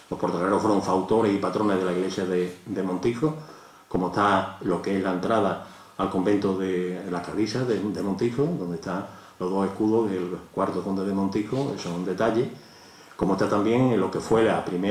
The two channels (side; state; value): both; identical; correlation 1.00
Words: Los portocarreros fueron fautores y patrones de la iglesia de Montijo, como está lo que es la entrada al convento de la Clarisas de Montijo, donde están los dos escudos del cuarto conde de Montijo, eso es un detalle, como está también en lo que fue la